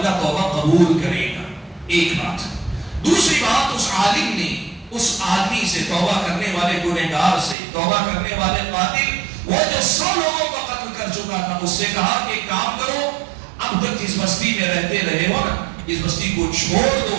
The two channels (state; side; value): drops out; left; at 7.6 s